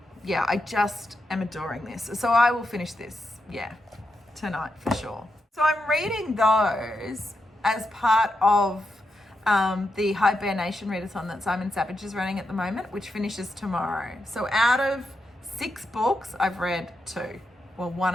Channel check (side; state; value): both; normal; correlation 0.85